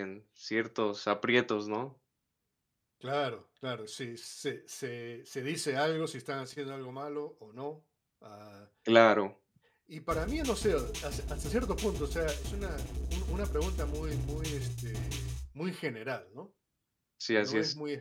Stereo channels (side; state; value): both; identical; correlation 1.00